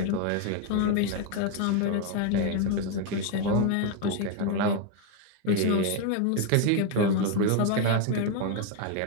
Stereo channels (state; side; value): different; both; correlation 0.01